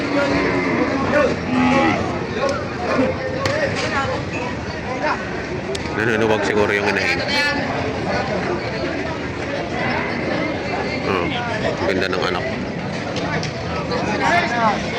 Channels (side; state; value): both; identical; correlation 1.00